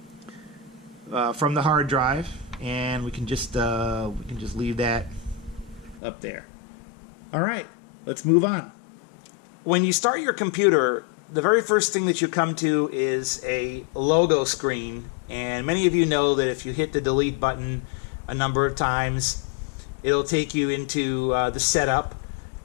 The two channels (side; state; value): right; drops out; at 6.0 s